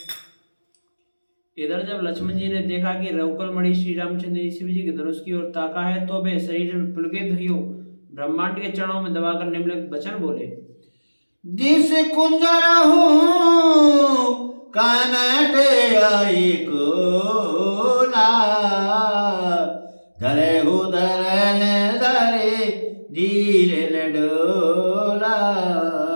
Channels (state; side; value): inverted; both; correlation -1.00